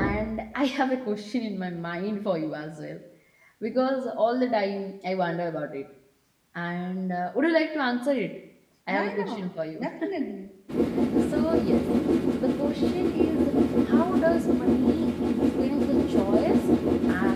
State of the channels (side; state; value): both; identical; correlation 1.00